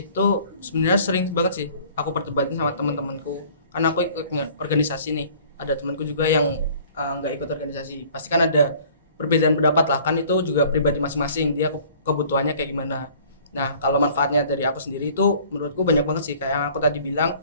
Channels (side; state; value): both; inverted; correlation -0.52